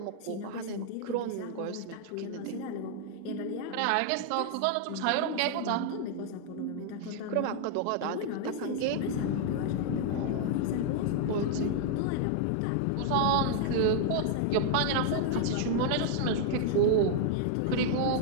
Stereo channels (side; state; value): both; different; correlation 0.00